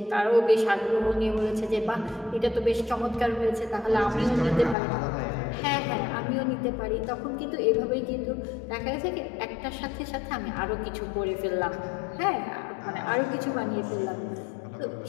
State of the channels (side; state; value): right; drops out; at 4.8 s